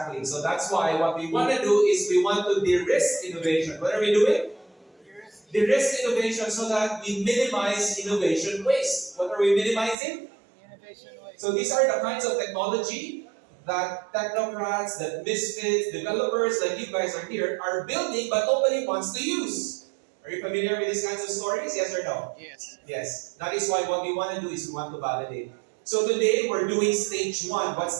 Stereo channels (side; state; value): left; drops out; at 10.0 s